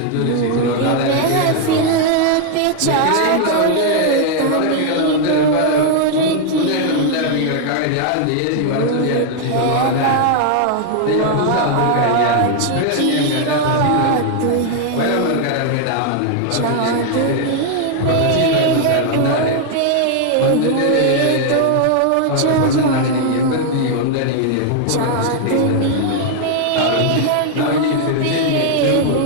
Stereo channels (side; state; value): both; different; correlation 0.00